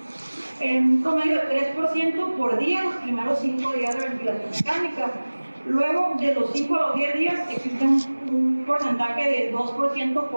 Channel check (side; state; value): both; inverted; correlation -1.00